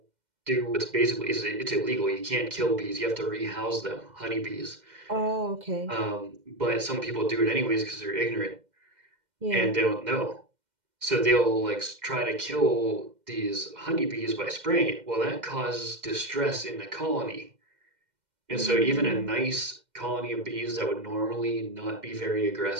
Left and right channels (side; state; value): left; late; 2.1 ms